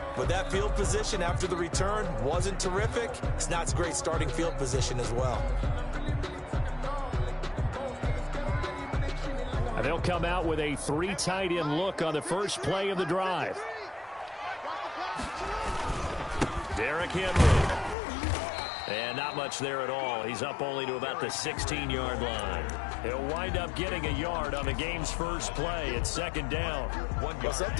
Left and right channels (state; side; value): drops out; right; at 17.9 s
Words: But that field position after the return wasn't terrific. It's not great starting field position as well. And they'll come out with a 3 tight end look on the first play of the drive. Derrick Henry. And not much there at all. He's up only to about the 16-yard line. He'll wind up getting a yard on the game's first play. It's second down. Well,